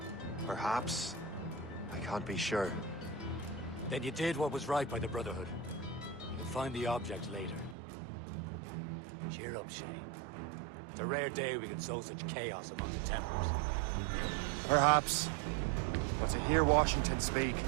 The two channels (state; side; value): drops out; left; at 7.8 s